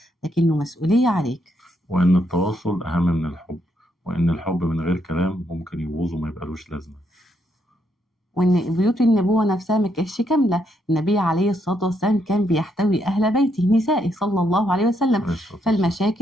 لكنه مسؤولية عليك. وإن التواصل أهم من الحب، وإن الحب من غير كلام ممكن يبوظ وما يبقالوش لازمة. وإن بيوت النبوة نفسها ما كانتش كاملة. النبي عليه الصلاة والسلام كان بيحتوي أهل بيته نسائه صلى الله عليه وسلم. عليه الصلاة والسلام.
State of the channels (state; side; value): normal; both; correlation 0.76